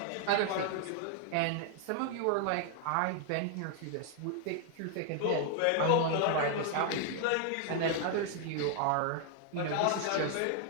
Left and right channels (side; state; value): both; different; correlation 0.00